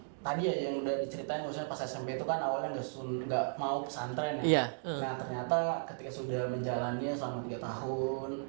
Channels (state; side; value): silent; left; digital silence